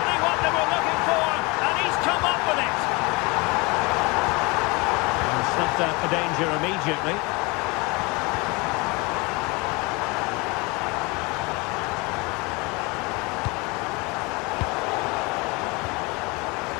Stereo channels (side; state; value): right; quieter; 26.6 dB